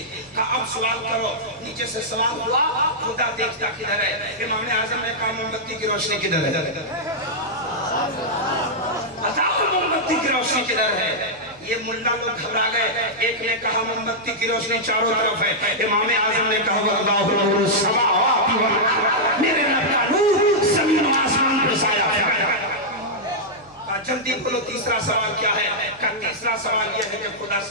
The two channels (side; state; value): right; noise; hum, 29 dB below the sound